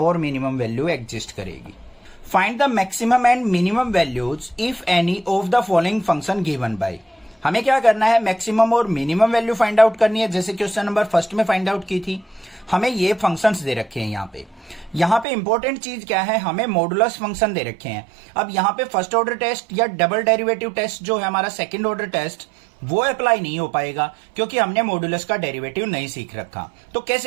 minimum value exist करेगी। Find the maximum and minimum values if any of the following function given by. हमें क्या करना है मैक्सिमम और मिनिमम वैल्यू फाइंड आउट करनी है, जैसे क्वेश्चन नंबर फर्स्ट में फाइंड आउट की थी। हमें ये फंक्शंस दे रखे हैं यहाँ पे इंपॉर्टेंट चीज क्या है, हमें मॉडुलस फंक्शन दे रखे हैं। अब यहाँ पे फर्स्ट ऑर्डर टेस्ट या डबल डेरिवेटिव टेस्ट जो है हमारा सेकंड ऑर्डर टेस्ट वो अप्लाई नहीं हो पाएगा, क्योंकि हमने मॉडुलस का डेरिवेटिव नहीं सीख रखा। तो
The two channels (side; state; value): left; drops out; at 15.2 s